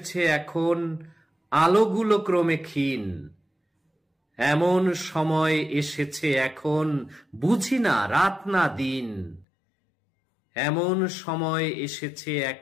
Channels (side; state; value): right; drops out; at 9.5 s